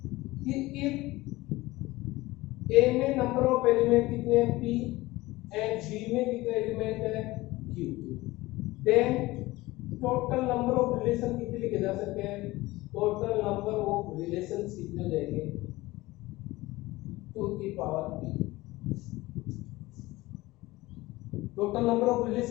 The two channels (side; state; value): right; quieter; 19.5 dB